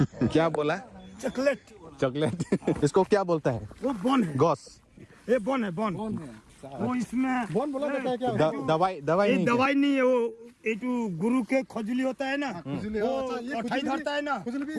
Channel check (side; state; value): both; identical; correlation 1.00